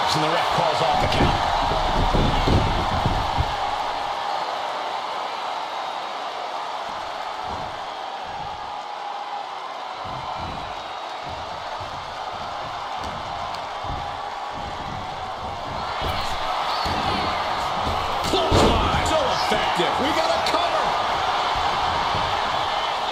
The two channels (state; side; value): identical; both; correlation 1.00